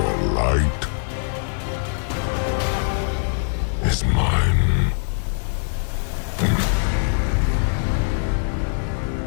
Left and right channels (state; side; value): silent; right; digital silence